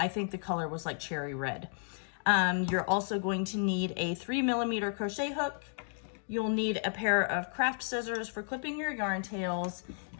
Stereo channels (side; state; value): right; silent; digital silence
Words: think the color was like cherry red. You're also going to need a 3mm crochet hook. You'll need a pair of craft scissors for clipping your yarn tails.